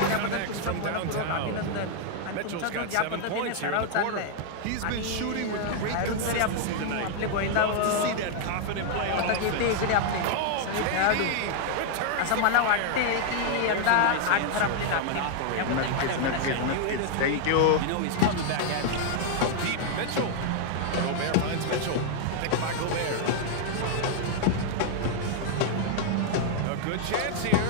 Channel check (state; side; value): different; both; correlation 0.00